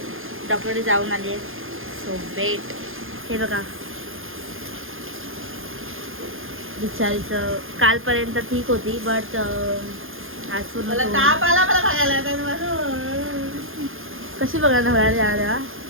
डॉक्टरकडे जाऊन आली आहे. So wait. हे बघा बिचारीचं कालपर्यंत ठीक होती बट आज पूर्ण कशी बघायला होणार तेव्हा.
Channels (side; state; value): left; late; 0.59 ms